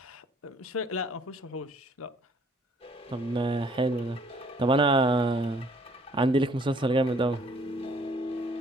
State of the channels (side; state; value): both; normal; correlation 0.60